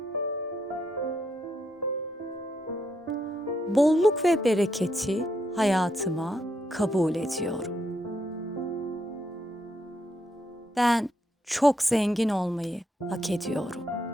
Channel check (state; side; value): normal; both; correlation 0.78